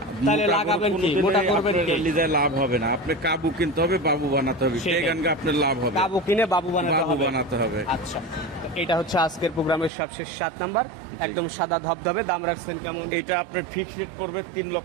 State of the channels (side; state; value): left; drops out; at 9.9 s